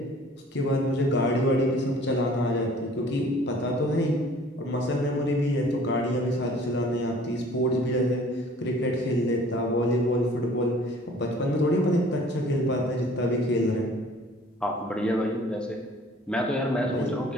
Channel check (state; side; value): normal; both; correlation 0.52